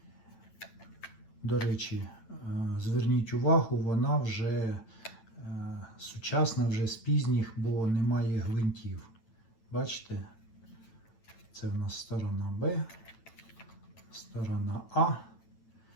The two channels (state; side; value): late; right; 8.9 ms